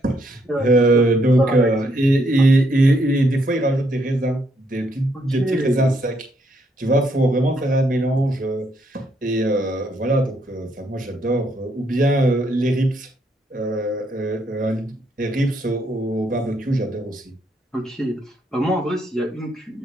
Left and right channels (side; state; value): both; normal; correlation 0.73